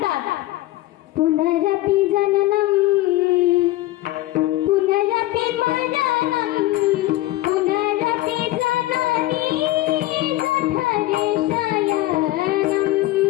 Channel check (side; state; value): right; quieter; 16.7 dB